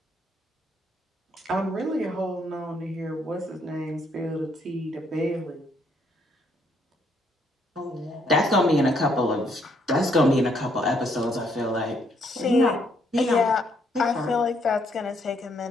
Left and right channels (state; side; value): normal; both; correlation 0.71